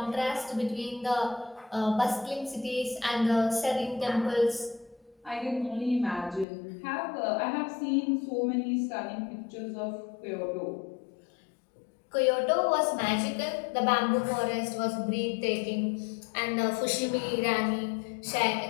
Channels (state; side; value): drops out; right; at 6.5 s